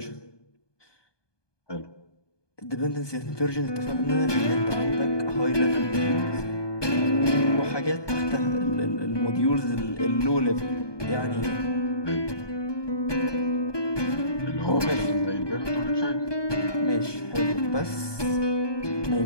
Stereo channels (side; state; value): right; late; 1.2 ms